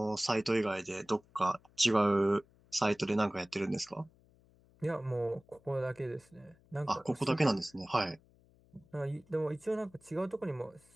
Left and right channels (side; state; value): left; noise; hum, 30 dB below the sound